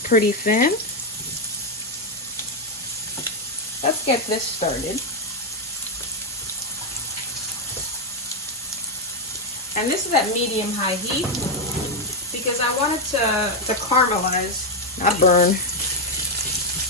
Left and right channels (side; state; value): both; normal; correlation 0.05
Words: pretty thin. Let's get this started. And this is at medium-high heat because I want it to caramelize, not burn.